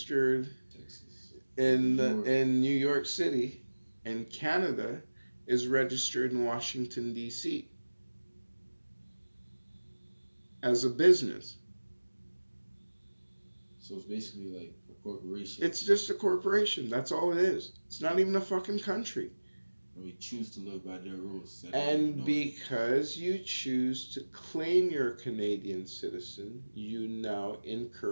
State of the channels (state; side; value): inverted; both; correlation -1.00